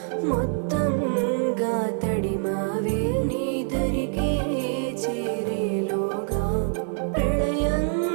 మొత్తంగా తడిమావే నీ దరికే చేరేలోగా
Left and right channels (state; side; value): silent; left; digital silence